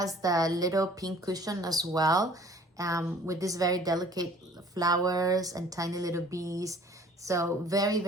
the little pink cushion as well, with this very delicate flowers and tiny little bees. So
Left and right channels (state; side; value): normal; both; correlation 0.52